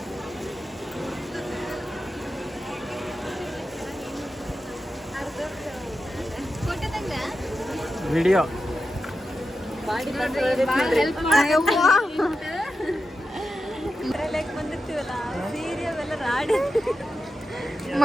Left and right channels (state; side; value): normal; both; correlation 0.90